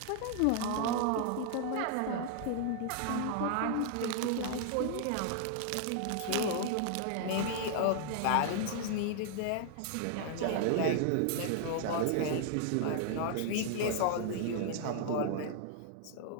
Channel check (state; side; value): different; both; correlation 0.00